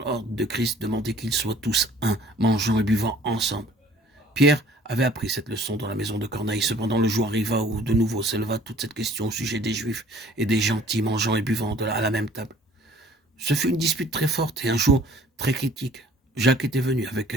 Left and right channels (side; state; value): both; normal; correlation 0.54